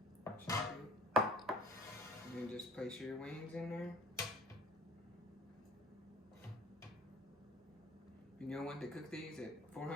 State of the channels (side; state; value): both; normal; correlation 0.48